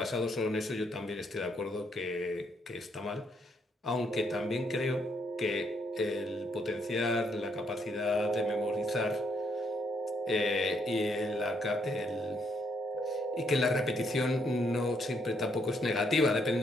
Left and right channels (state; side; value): normal; both; correlation 0.73